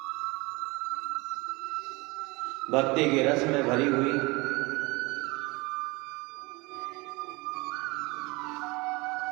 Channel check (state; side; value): quieter; left; 24.7 dB